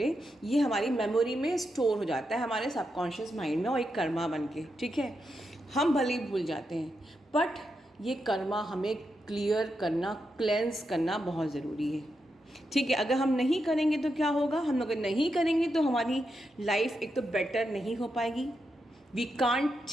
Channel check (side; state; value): both; normal; correlation 0.85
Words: ये हमारी मेमोरी में स्टोर हो जाता है हमारे सबकॉन्शियस माइंड में, और एक कर्मा बन के, ठीक है। हम भले ही भूल जाते हैं, बट ये कर्मा हमें क्लियर करना, क्लेंस करना बहुत ज़रूरी है, ठीक है। अगर हम नहीं करेंगे तो क्या होगा? हम अगर नहीं करेंगे तो हमारी लाइफ एक तो बेटर नहीं हो पाएगी, we can't